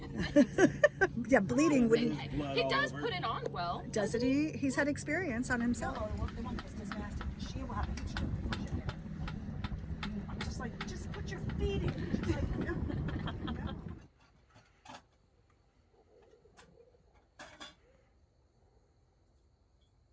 Yeah, bleeding wouldn't. He does put it on well. Doesn't he? He's had experience on himself. I'm just like, just put your feet in. Just like, no.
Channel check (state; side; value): identical; both; correlation 1.00